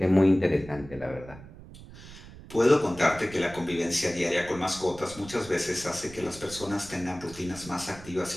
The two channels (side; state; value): right; noise; rumble, 17 dB below the sound